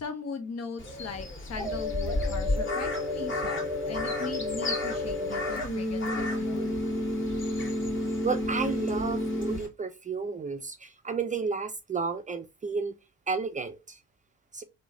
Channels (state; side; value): normal; both; correlation 0.46